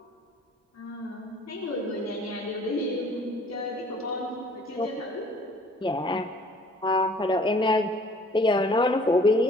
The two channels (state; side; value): normal; both; correlation 0.55